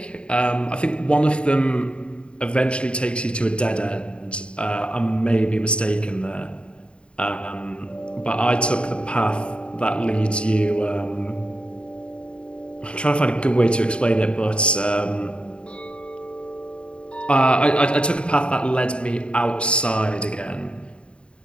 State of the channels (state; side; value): late; right; 0.055 ms